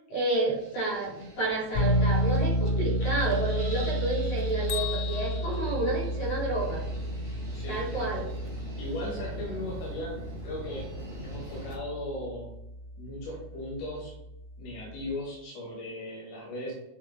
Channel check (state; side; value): late; right; 19 ms